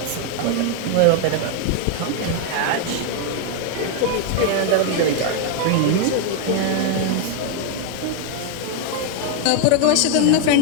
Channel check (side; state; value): both; different; correlation 0.00